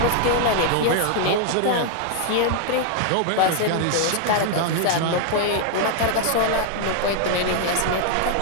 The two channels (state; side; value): different; both; correlation 0.00